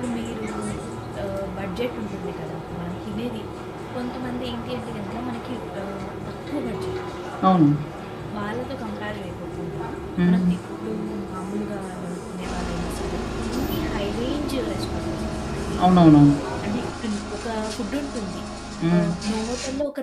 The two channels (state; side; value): identical; both; correlation 1.00